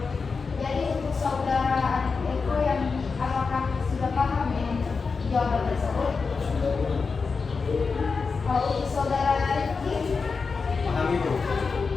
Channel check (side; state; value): right; quieter; 4.8 dB